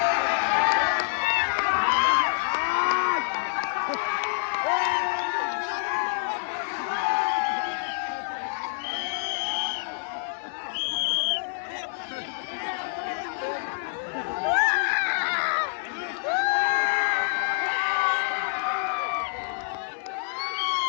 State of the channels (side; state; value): right; silent; 60 dB below the other